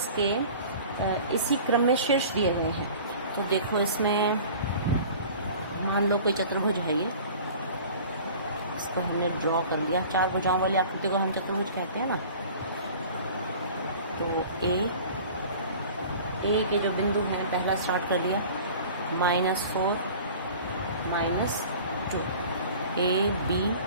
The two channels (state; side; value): inverted; both; correlation -0.43